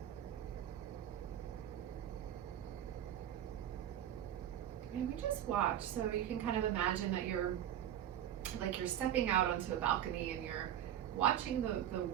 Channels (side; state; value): left; quieter; 11.0 dB